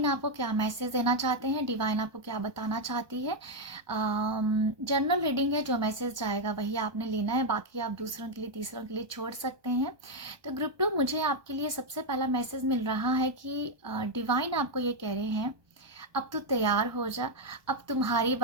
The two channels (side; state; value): left; late; 1.2 ms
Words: आपको क्या मैसेज देना चाहते हैं, डिवाइन आपको क्या बताना चाहती है। जनरल रीडिंग है, जो मैसेज जाएगा वही आपने लेना है, बाकी आप दूसरों के लिए तीसरों के लिए छोड़ सकते हैं। तो ग्रुप 2 मुझे आपके लिए सबसे पहला मैसेज मिल रहा है कि डिवाइन आपको ये कह रहे हैं, अब तू तैयार हो जा, अब तुम्हारी